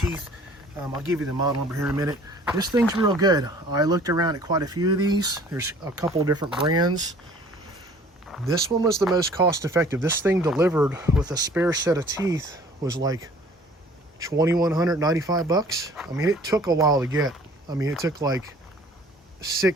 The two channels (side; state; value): both; normal; correlation 0.52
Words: I'll give you the model number here in a minute. This thing's real good. I looked around at quite a few of these. There's a couple of different brands. This one was the most cost effective. This thing delivered with a spare set of teeth was like 2,195 bucks. I mean, it took a while to get. I mean, it took like